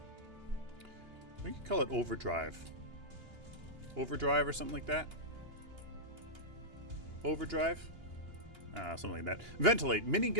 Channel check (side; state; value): left; late; 2.9 ms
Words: we could call it overdrive. Overdrive or something like that. Overdrive? Something like that. Ventilate.